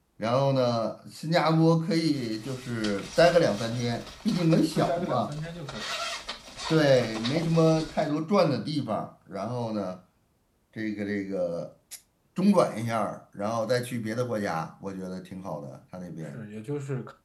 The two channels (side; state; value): both; identical; correlation 1.00